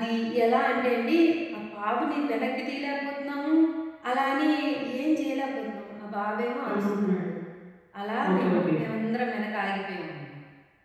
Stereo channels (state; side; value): identical; both; correlation 1.00